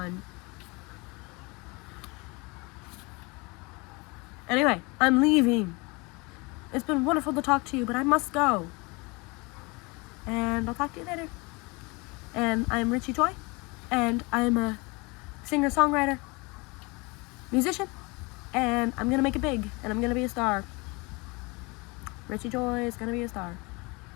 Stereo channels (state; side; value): quieter; right; 27.0 dB